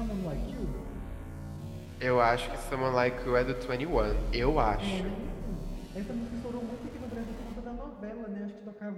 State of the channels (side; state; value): both; identical; correlation 1.00